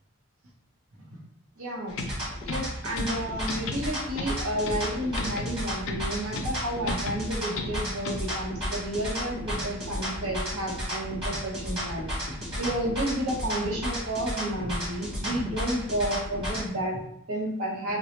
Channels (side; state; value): both; normal; correlation 0.30